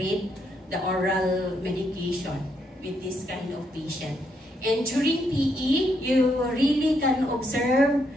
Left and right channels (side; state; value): both; normal; correlation 0.76